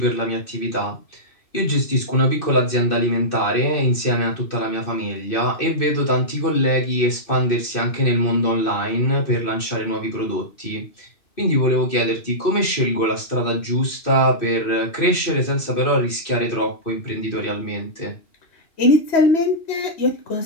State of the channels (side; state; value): right; late; 2.6 ms